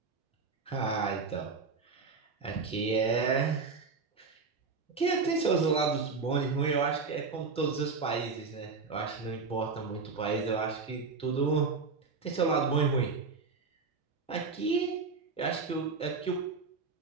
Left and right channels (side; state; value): left; quieter; 4.6 dB